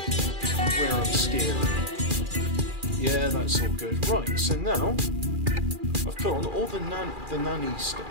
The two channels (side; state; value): left; late; 2.4 ms